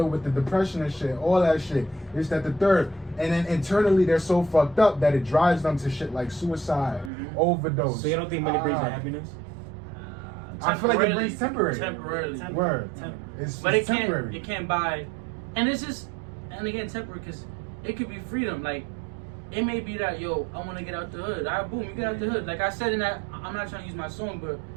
with the depression and shit, all that shit. It's that the third. And then internally they're so fucked up that it drives them to shit like suicide, overdose. So you don't think money brings Ah. the happiness? I feel like it brings temporary. Temporarily. Word. Temporary. It's But it temporary. can't buy, and it's just, and again, temporary because it could be freedom. Like, it may be that, yo, I want to get out the hood. All right, boom, you get out the hood. Like I said in that, I'm not trying to use my song, but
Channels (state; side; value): drops out; left; at 7.1 s